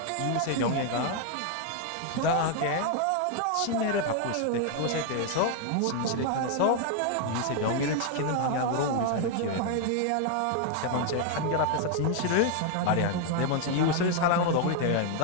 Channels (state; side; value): different; both; correlation 0.00